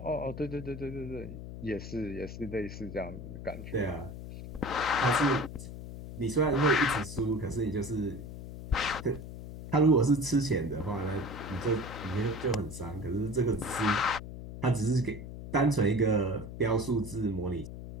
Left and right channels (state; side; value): noise; left; hum, 10 dB below the sound